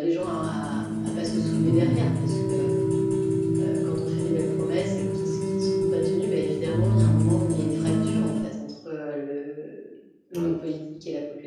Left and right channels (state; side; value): identical; both; correlation 1.00